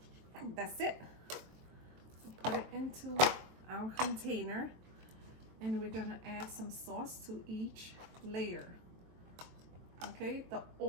that's it. So put it into our container and we're gonna add some sauce to each layer. Okay, the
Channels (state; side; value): late; left; 23 ms